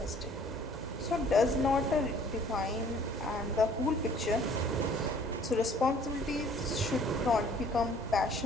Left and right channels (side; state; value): both; normal; correlation 0.55